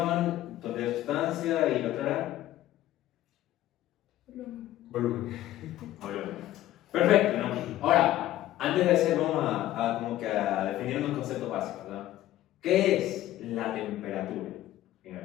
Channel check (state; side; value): quieter; right; 14.2 dB